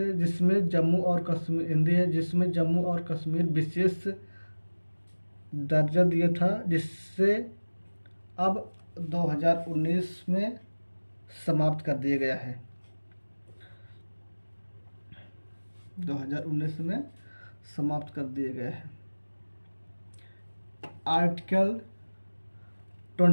जिसमें जम्मू और कश्मीर, हिंदी है, जिसमें जम्मू और कश्मीर विशेष दर्जा दिया था, जिससे अब 2019 में समाप्त कर दिया गया है। 2019 में समाप्त कर दिए गए हैं। Article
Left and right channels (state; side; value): inverted; both; correlation -1.00